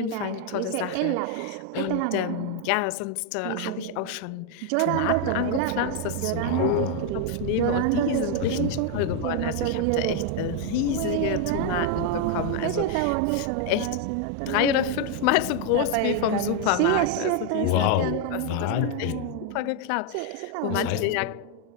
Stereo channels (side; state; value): both; different; correlation 0.01